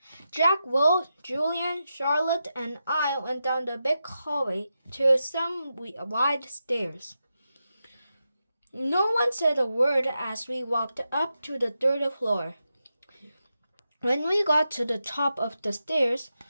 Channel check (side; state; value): both; inverted; correlation -0.88